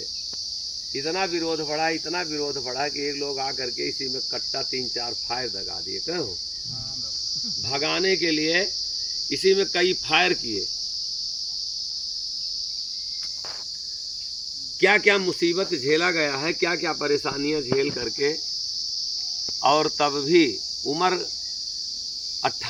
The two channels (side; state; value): both; identical; correlation 1.00